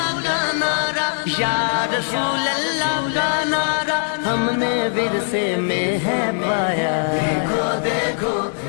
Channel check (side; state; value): right; silent; digital silence